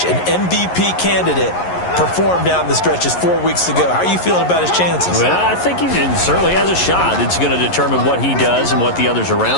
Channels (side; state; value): right; late; 11 ms